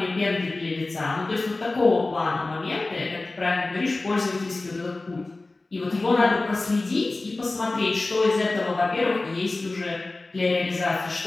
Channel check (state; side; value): quieter; right; 3.2 dB